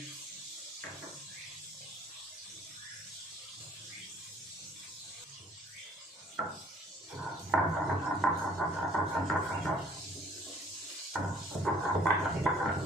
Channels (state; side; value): normal; both; correlation 0.57